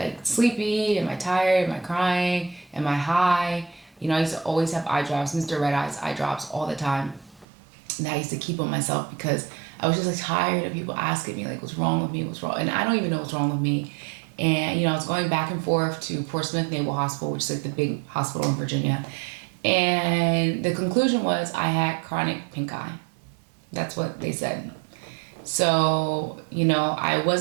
sleepy? Am I tired? Am I crying? Am I high? I used to always have eye drops, Mr. Red Eyes eye drops all the time. And I used to keep on myself because I was just, like, tired of people asking me, like, what's wrong with me? What's wrong? And I don't even know what's wrong with me. And, I was going back and forth to Portsmouth Naval Hospital, which is, like, the big hospital in Virginia. And the conclusion was I had chronic pink eye. That's what they said. So, I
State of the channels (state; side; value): drops out; left; at 7.5 s